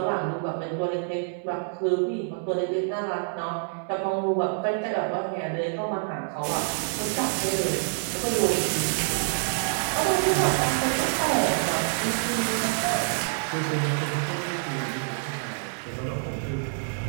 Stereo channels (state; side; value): silent; left; 60 dB below the other